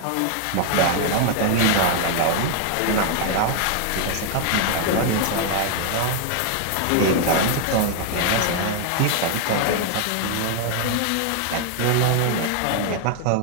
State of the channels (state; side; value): different; both; correlation 0.00